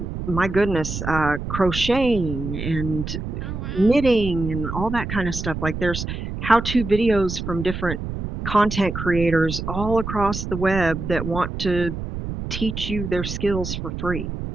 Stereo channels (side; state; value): right; noise; rumble, 6 dB below the sound